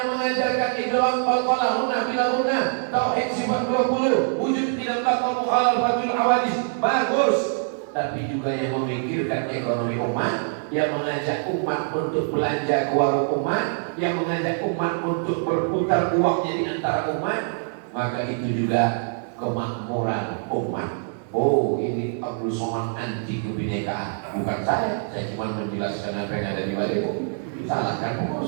mengajarkan idgham qalqalah hunna bila hunna, tauhid sifat 20, wujud tidak bakal mukhalafatul awadis, bagus. Tapi juga yang memikirkan ekonomi umat, yang mengajak umat untuk belanja ke warung umat, yang mengajak umat untuk berputar uangnya di antara umat, maka itu juga kemakmuran umat. Oh, ini Abdul Somad anti kebinekaan. Bukan saya cuma menjelaskan apa yang ada di balik. Salahkan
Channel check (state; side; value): silent; left; digital silence